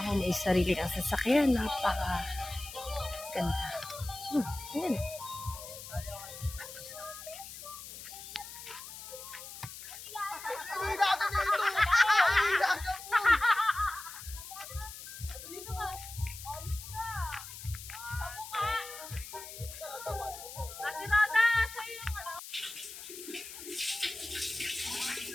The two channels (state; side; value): noise; left; hiss, 12 dB below the sound